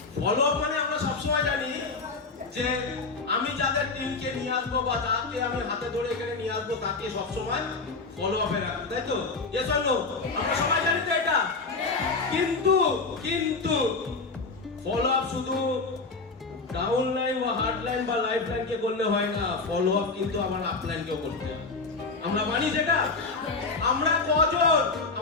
ফলো আপ মানে আমরা সবসময় জানি যে আমি যাদের টিমকে নিয়ে আসবো বা যাকে আমি হাতে ধরে এখানে নিয়ে আসবো তাকে সবসময় ফলো আপে রাখবো, তাই তো? এ চলো আমরা সবাই জানি তো এটা। কিন্তু কিন্তু ফলো আপ শুধু ডাউন লাইন বা হার্ড লাইন বা লাইফ লাইনকে করলে হয় না, ফলো আপ কিন্তু আমার আপ লাইনকেও করতে হবে। আমরা মানি সেটা? আমরা কজন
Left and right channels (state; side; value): quieter; right; 4.0 dB